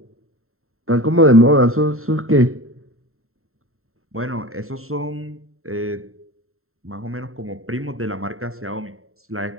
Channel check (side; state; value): left; late; 0.62 ms